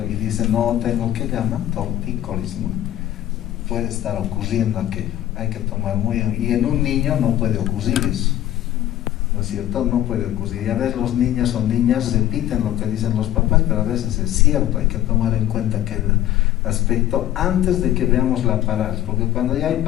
y dice, no tengo, ¿qué llaman? Tortícolis, ¿no? Puede estar ocurriendo aquello. Hay que tomar muy bien. Y en un niño no puede ocurrir eso, ¿no es cierto? No puede ocurrir. Y a veces los niños o niñas repiten lo que dicen los papás, pero a veces es cierto. Hay que tomar en cuenta aquel aspecto antes de que veamos la parálisis, porque cuando ya hay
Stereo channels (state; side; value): quieter; right; 13.1 dB